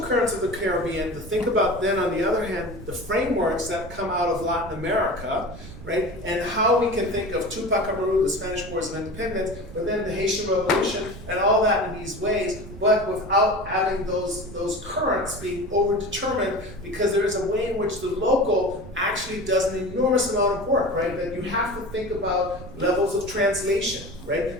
currents of the Caribbean, to think about then, on the other hand, the frameworks that come out of Latin America, right? And how we can think of Tupac Amaru, the Spanish Wars of Independence, but then the Haitian Revolution, and all that in these ways, but without having those currents being overdetermined, because there is a way in which the local actually does an enormous amount of work, right? That you have to think about levels of translation,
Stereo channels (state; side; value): noise; right; rumble, 14 dB below the sound